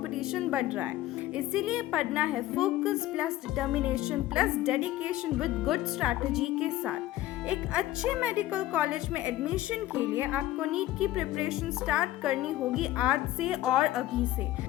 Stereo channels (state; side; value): quieter; right; 14.8 dB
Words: बढ़ रहा है. इसीलिए पढ़ना है focus plus determination plus dedication with good strategy के साथ. एक अच्छे मेडिकल कॉलेज में एडमिशन के लिए आपको नीट की प्रिपरेशन स्टार्ट करनी होगी आज से और अभी से.